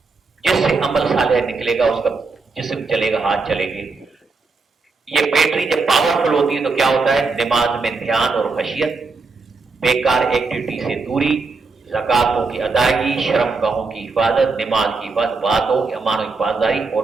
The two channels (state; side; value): quieter; left; 4.1 dB